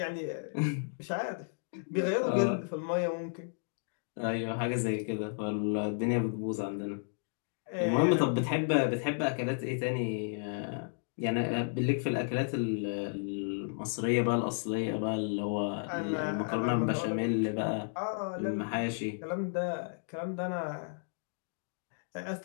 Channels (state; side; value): silent; right; digital silence